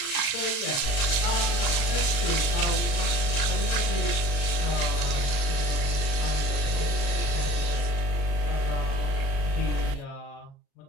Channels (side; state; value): right; late; 37 ms